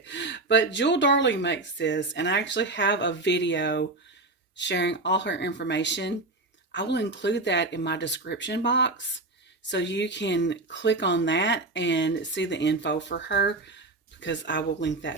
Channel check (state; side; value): quieter; left; 3.1 dB